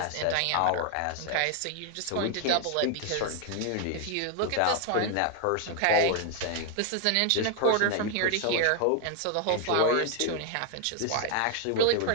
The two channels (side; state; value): both; different; correlation 0.00